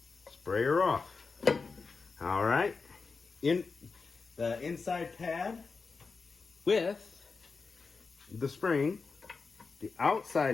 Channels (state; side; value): quieter; right; 4.6 dB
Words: spray her off. All right, in the inside pad with the spring, the